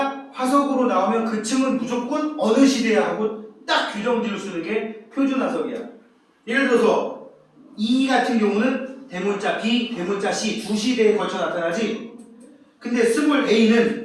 화석으로 나오면 그 층은 무조건 어느 시대야 하고 딱 규정지을 쓰는 게 표준화석이야. 예를 들어서 E 같은 경우는 대문자 B, 대문자 C 두 시대에 걸쳐 나타나지. 근데 스몰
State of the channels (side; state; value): both; identical; correlation 1.00